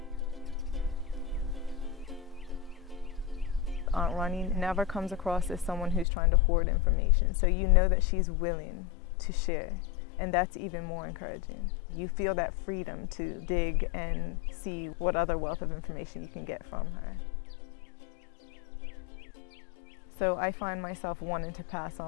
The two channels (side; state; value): right; drops out; at 6.1 s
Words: Aunt Ronnie never comes across as someone who's trying to hoard information. So you know that she's willing to share. And that's even more encouraging. You feel that freedom to dig and see what other wealth of information you can get from her. So I find myself wanting to pass